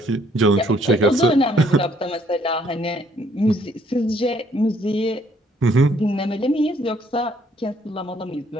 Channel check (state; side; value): normal; both; correlation 0.65